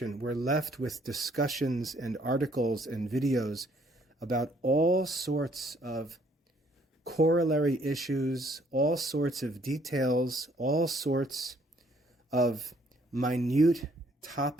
we're left with discussions and articles and videos about all sorts of corollary issues, all sorts of details, all sorts of minute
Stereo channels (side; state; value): both; normal; correlation 0.64